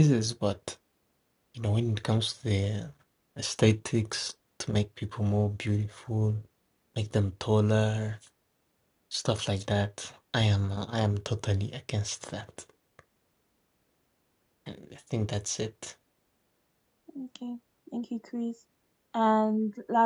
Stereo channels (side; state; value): both; identical; correlation 1.00